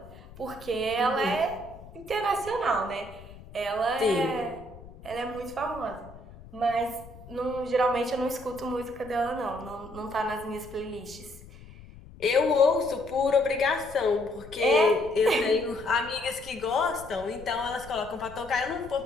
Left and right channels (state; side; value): noise; left; rumble, 18 dB below the sound